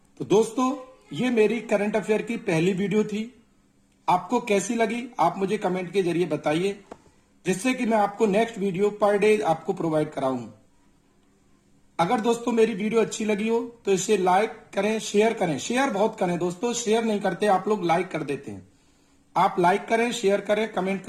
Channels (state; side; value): identical; both; correlation 1.00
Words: तो दोस्तों ये मेरी करंट अफेयर की पहली वीडियो थी। आपको कैसी लगी आप मुझे कमेंट के जरिए बताइए, जिससे कि मैं आपको नेक्स्ट वीडियो पर डे आपको प्रोवाइड कराऊं। अगर दोस्तों मेरी वीडियो अच्छी लगी हो तो इसे लाइक करें, शेयर करें। शेयर बहुत करें दोस्तों, शेयर नहीं करते आप लोग, लाइक कर देते हैं। आप लाइक करें, शेयर करें, कमेंट